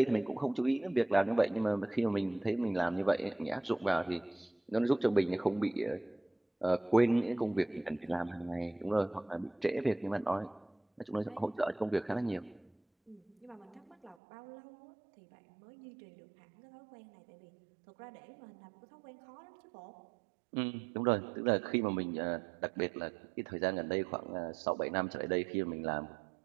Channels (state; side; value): drops out; left; at 14.2 s